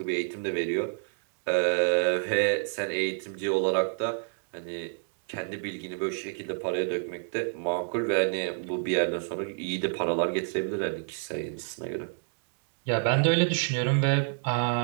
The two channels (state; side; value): silent; left; digital silence